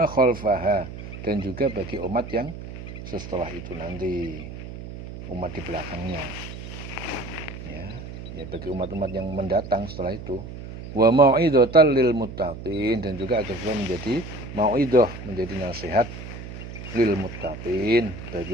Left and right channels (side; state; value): right; noise; hum, 11 dB below the sound